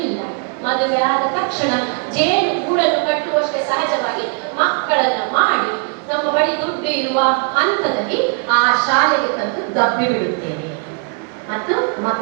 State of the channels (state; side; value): quieter; left; 39.2 dB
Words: ಇಲ್ಲ. ಮದುವೆ ಆದ ತಕ್ಷಣ ಜೇನು ಗೂಡನ್ನು ಕಟ್ಟುವಷ್ಟೇ ಸಹಜವಾಗಿ ಮಕ್ಕಳನ್ನ ಮಾಡಿ ನಮ್ಮ ಬಳಿ ದುಡ್ಡು ಇರುವ ಹಂತದಲ್ಲಿ ಆ ಶಾಲೆಗೆ ತಂದು ದಬ್ಬಿ ಬಿಡುತ್ತೇವೆ ಮತ್ತು